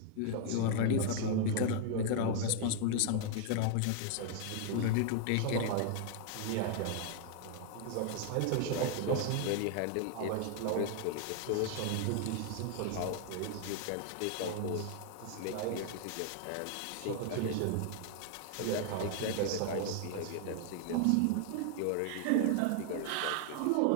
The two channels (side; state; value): both; different; correlation 0.00